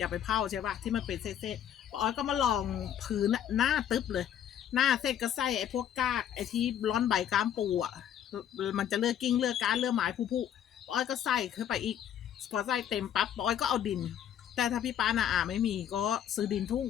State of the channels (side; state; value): right; quieter; 9.9 dB